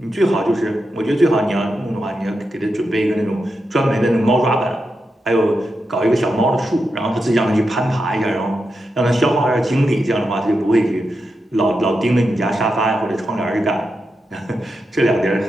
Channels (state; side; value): normal; both; correlation 0.87